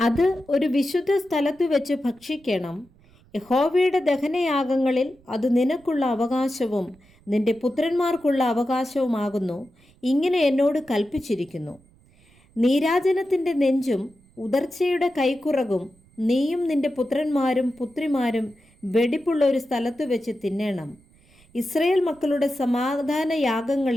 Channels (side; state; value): right; noise; rumble, 30 dB below the sound